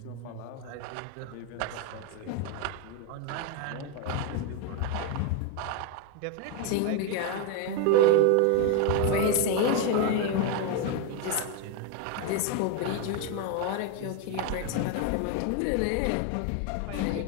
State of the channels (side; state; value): both; different; correlation 0.01